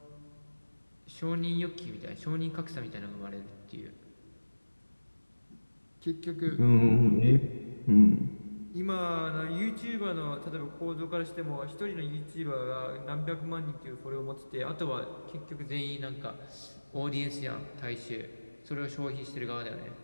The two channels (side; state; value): both; inverted; correlation -1.00